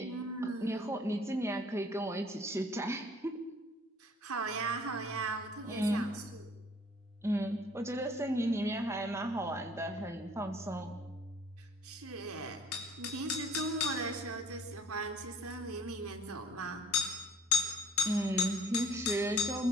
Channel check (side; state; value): both; normal; correlation 0.54